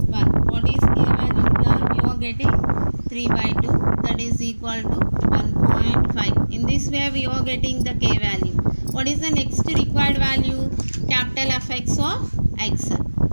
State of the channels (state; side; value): inverted; both; correlation -1.00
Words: What is k value here? You are getting 3 by 2, that is equal to 1.5. In this way we are getting the k value. What is the next required value? Capital Fx of x.